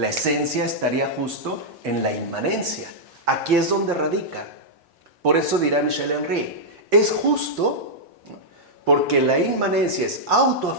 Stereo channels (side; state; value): both; normal; correlation -0.08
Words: esencia estaría justo en la inmanencia. Aquí es donde radica. Por eso dirá Michel Henry, es justo porque la inmanencia es